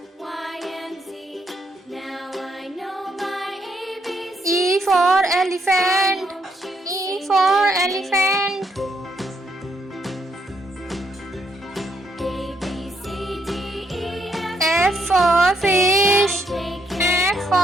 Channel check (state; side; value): normal; both; correlation 0.74